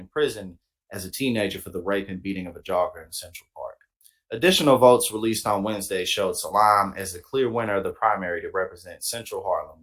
as a teenager for the rape and beating of a jogger in Central Park. Additional votes released on Wednesday showed Salaam as the clear winner of the primary to represent Central Harlem,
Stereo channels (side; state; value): both; identical; correlation 1.00